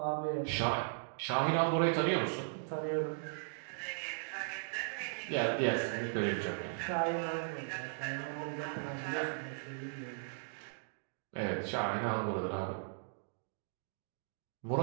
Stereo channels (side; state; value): left; silent; digital silence